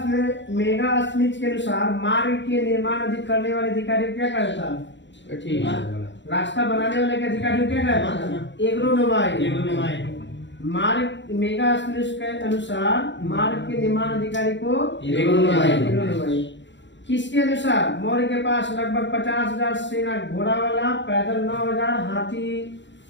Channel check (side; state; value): right; late; 0.53 ms